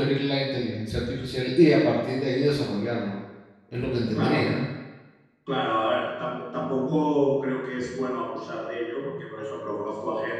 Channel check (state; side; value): identical; both; correlation 1.00